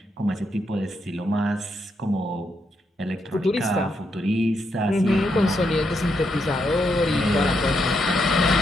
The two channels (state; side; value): normal; both; correlation 0.80